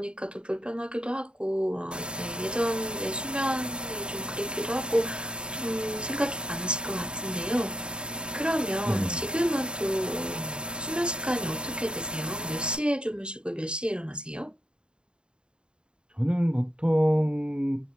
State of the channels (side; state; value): left; late; 0.051 ms